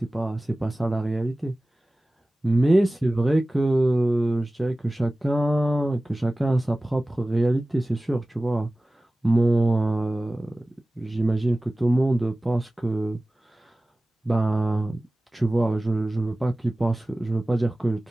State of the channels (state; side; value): normal; both; correlation 0.97